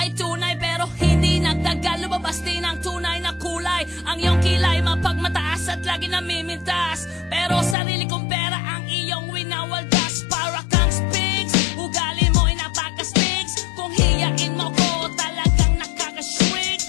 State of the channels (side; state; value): right; drops out; at 7.8 s